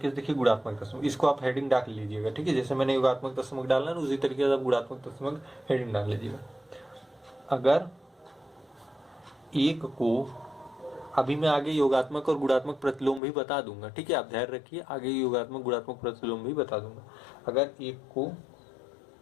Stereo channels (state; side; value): drops out; right; at 13.2 s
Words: से देखिए गुणात्मक तत्समक। इसको आप हेडिंग डाल लीजिएगा। ठीक है, जैसे मैंने योगात्मक तत्समक डालना है उसी तरीके से आप गुणात्मक तत्समक हेडिंग डाल लीजिएगा। अगर एक को, अभी मैं आगे योगात्मक और गुणात्मक प्रतिलोम भी बता दूंगा। ठीक है, आप ध्यान रखिए, आगे योगात्मक गुणात्मक प्रतिलोम भी बता दूंगा। अगर एक को